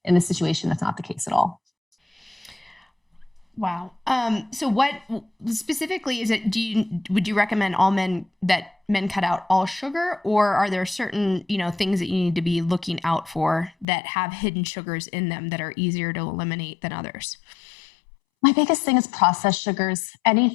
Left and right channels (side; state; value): right; drops out; at 13.9 s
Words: In this situation, that's not the case at all. Wow. So what specifically is it, would you recommend men cut out all sugar, or are there certain, things that you need to be looking out for that have hidden sugars in them that are easier to eliminate than others? My biggest thing is processed sugars.